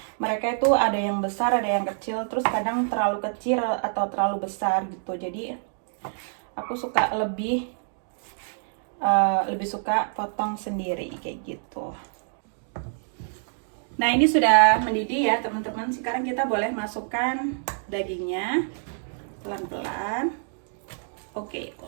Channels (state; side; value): silent; left; digital silence